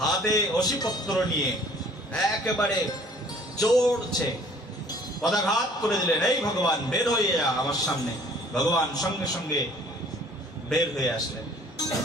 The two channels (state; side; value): normal; both; correlation 0.54